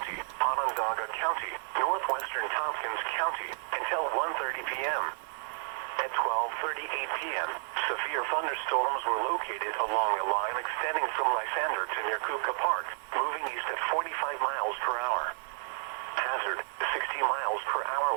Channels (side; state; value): left; silent; 57 dB below the other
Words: Onondaga County, northwestern Tompkins County, until 1:30 p.m. At 12:38 p.m., severe thunderstorms were located along a line extending from Lysander to near Kuka Park, moving east at 45 miles per hour. Hazard, 60 miles per hour